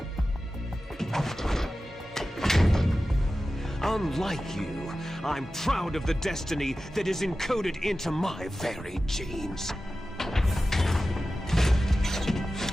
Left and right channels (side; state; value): both; normal; correlation 0.94